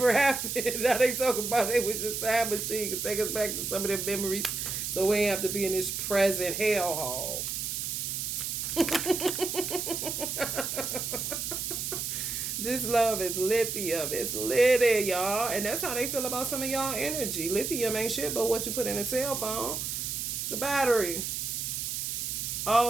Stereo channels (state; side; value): noise; right; hiss, 3 dB below the sound